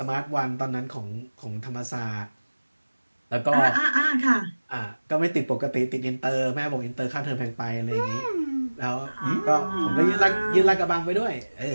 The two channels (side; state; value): both; inverted; correlation -1.00